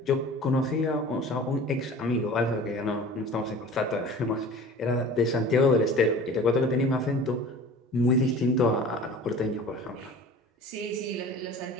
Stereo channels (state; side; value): normal; both; correlation 0.41